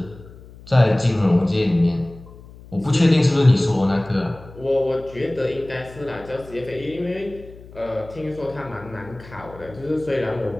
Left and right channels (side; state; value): left; noise; hum, 19 dB below the sound